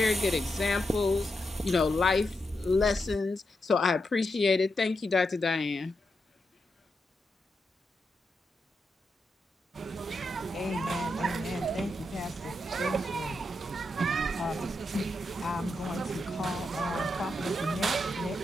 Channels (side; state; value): both; normal; correlation 0.85